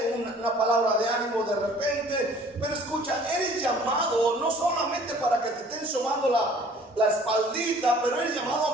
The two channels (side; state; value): both; normal; correlation 0.53